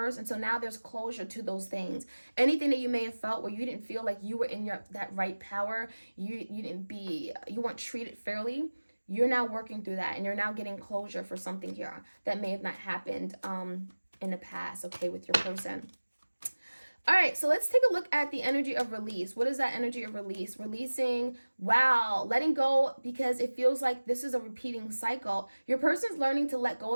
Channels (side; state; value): both; inverted; correlation -1.00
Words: And so now there's closure to those things. Anything that you may have felt where you didn't feel like you were in that right power, you weren't treated fairly, you're now working through that, and you're now getting closure for something here that may have not happened in the past, okay, with your person. All right, so let's take a look at the energy of release. What is that energy of release? Releasing, wow, letting go, because it feels like this is a repeating cycle. Your person's learning to let go